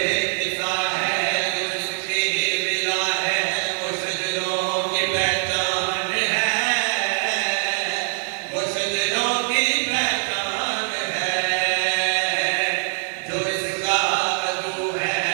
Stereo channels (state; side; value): silent; left; 59 dB below the other